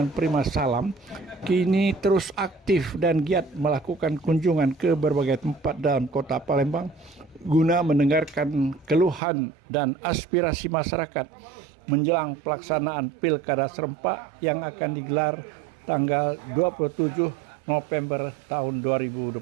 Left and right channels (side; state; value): left; drops out; at 9.2 s